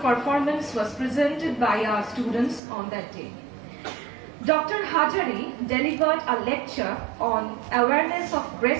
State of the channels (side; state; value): left; drops out; at 2.6 s